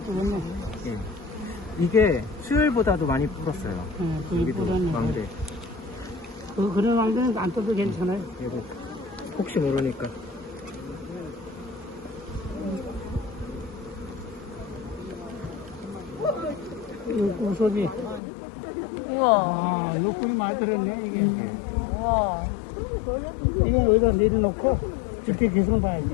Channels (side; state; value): right; drops out; at 18.2 s